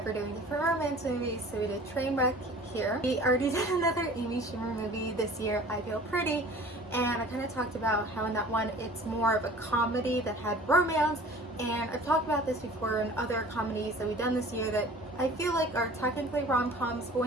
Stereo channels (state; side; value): normal; both; correlation 0.45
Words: we're doing different romance movies, so we did Trainwreck here. We already did another Amy Schumer movie this year, I Feel Pretty, and I kind of talked about how in that one it's more of a comedy that had romance, and I've talked about this before in other comedies that we've done this year that I feel like are technically rom-coms, but